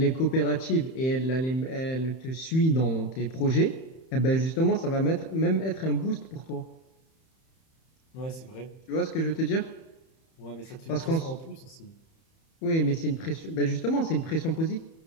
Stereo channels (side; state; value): right; late; 31 ms